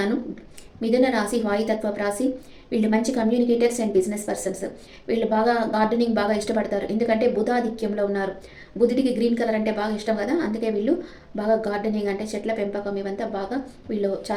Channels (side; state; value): both; identical; correlation 1.00